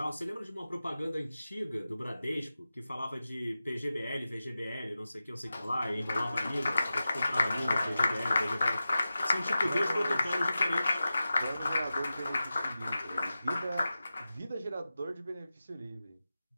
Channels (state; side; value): inverted; both; correlation -0.93